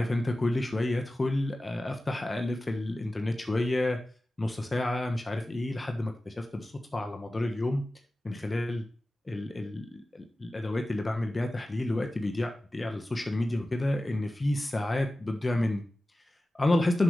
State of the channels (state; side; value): normal; both; correlation 0.95